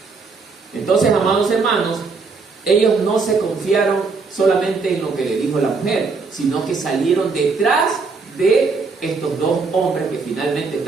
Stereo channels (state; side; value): quieter; left; 4.5 dB